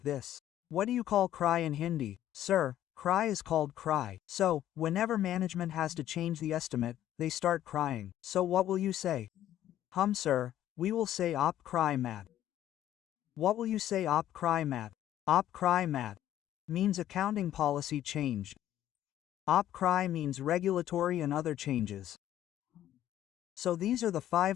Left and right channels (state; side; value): quieter; right; 12.2 dB